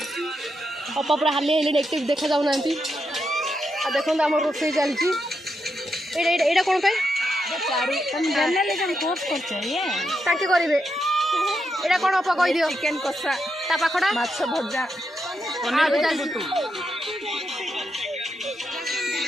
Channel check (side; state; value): both; normal; correlation 0.83